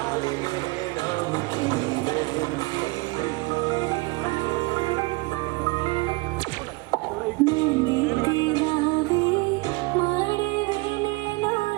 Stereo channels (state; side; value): quieter; left; 24.9 dB